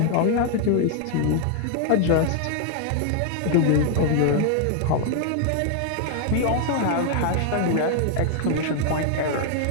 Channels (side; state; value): both; different; correlation 0.00